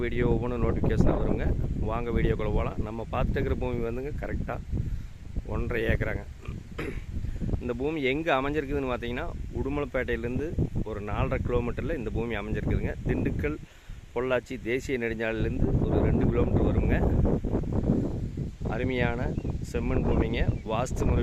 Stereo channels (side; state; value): both; identical; correlation 1.00